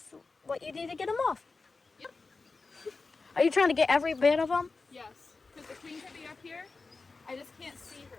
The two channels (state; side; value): quieter; right; 4.0 dB